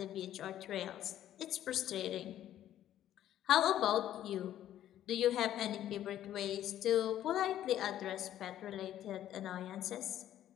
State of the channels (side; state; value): right; quieter; 11.9 dB